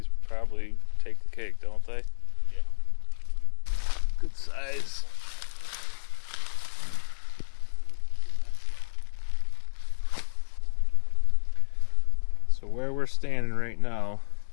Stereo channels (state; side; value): silent; right; 59 dB below the other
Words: probably take the cake, don't they? Yeah. Good size. So where we're standing right now